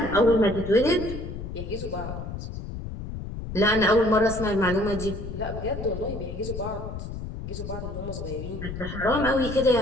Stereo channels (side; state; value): left; noise; rumble, 8 dB below the sound